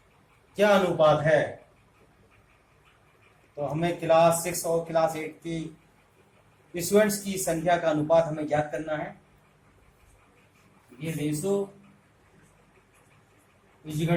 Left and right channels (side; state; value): both; identical; correlation 1.00